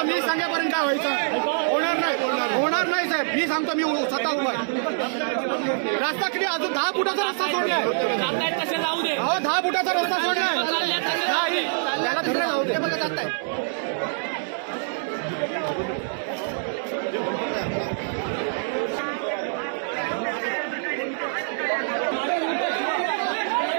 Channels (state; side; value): silent; left; 62 dB below the other